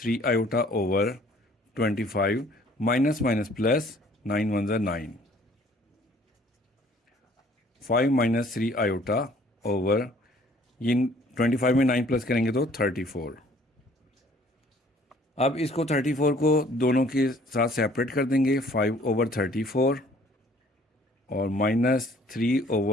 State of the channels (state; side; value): normal; both; correlation 0.57